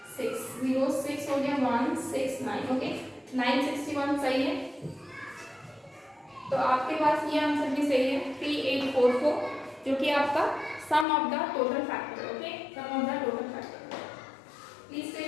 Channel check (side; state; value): right; drops out; at 11.1 s